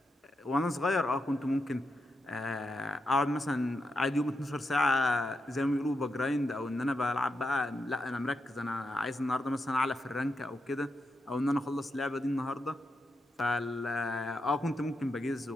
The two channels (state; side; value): normal; both; correlation 0.85